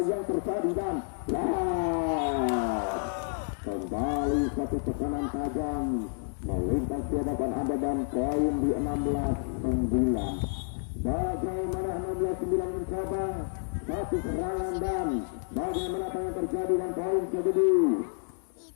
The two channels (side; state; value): right; silent; digital silence